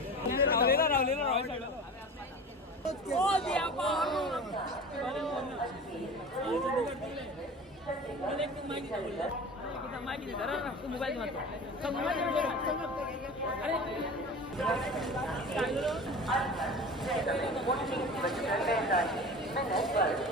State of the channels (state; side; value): normal; both; correlation 0.35